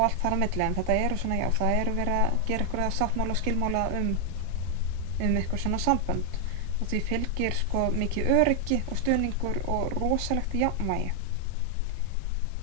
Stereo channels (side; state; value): both; different; correlation 0.00